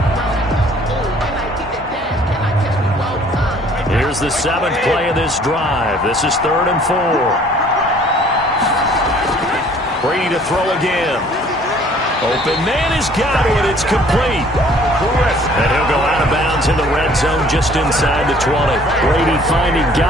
Here's the 7th play of this drive. This is 3rd and 4. Brady to throw again. Open man is Godwin. It's complete. And he'll go out of bounds in the red zone just inside the 20. Brady finding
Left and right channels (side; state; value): both; normal; correlation 0.56